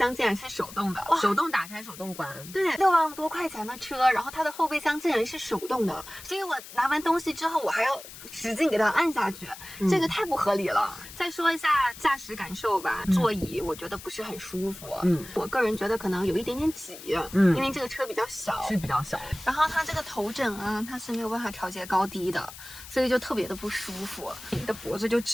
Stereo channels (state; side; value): noise; left; hiss, 15 dB below the sound